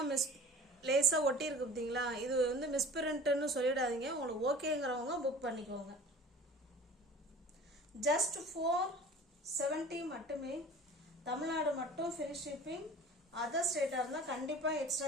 லேசா ஒட்டி இருக்கு பார்த்தீங்களா, இது வந்து மிஸ்பிரிண்ட்னு சொல்லிடாதீங்க. உங்களுக்கு ஓகேங்கிறவங்க புக் பண்ணிக்கோங்க. ஜஸ்ட் 470 மட்டுமே. தமிழ்நாடு மட்டும் ஃப்ரீ ஷிப்பிங். அதர் ஸ்டேட்டா இருந்தா கண்டிப்பா எக்ஸ்ட்ரா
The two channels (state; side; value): normal; both; correlation 0.42